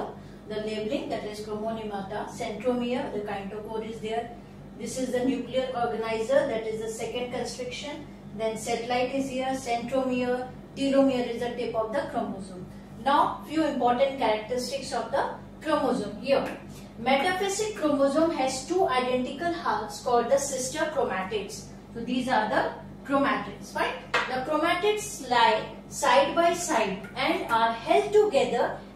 The labeling, that is chromonymata, centromere, the kinetochore is there. This is the nuclear organizer, that is the second constriction. Then satellite is here, centromere, telomere is the tip of the chromosome. Now few important characteristics of the chromosome here. Metaphasic chromosome has two identical halves called the sister chromatids. So these are the chromatids, right? The chromatids lie side by side and are held together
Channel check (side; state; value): both; identical; correlation 1.00